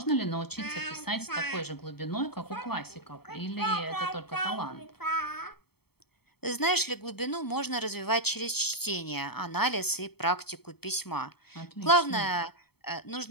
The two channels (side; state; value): right; late; 0.96 ms